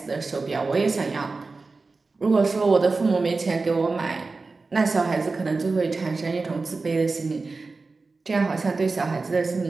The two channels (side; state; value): left; quieter; 3.9 dB